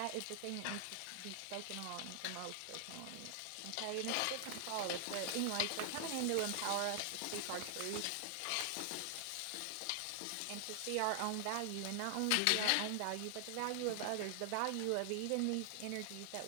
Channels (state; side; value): different; both; correlation 0.00